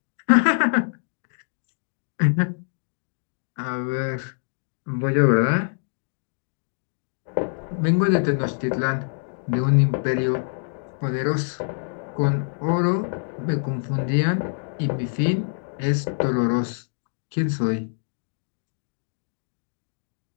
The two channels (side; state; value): right; silent; digital silence